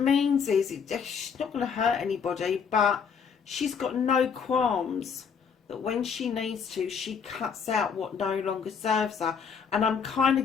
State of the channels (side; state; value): right; quieter; 6.5 dB